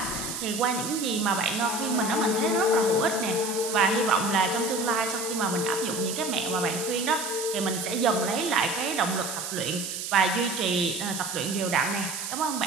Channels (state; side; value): noise; right; hiss, 5 dB below the sound